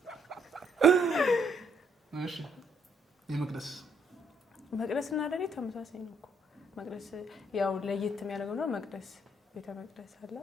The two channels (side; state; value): both; normal; correlation 0.69